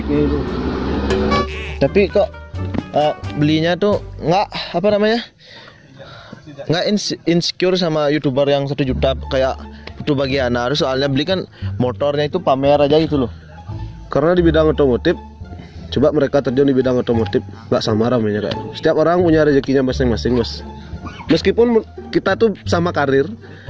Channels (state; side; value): identical; both; correlation 1.00